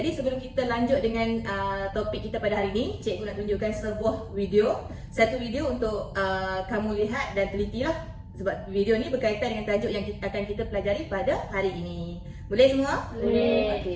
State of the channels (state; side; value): identical; both; correlation 1.00